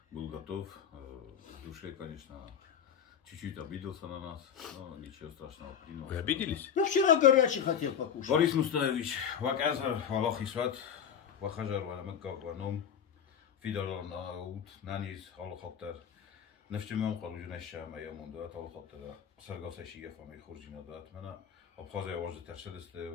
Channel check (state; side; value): quieter; right; 8.1 dB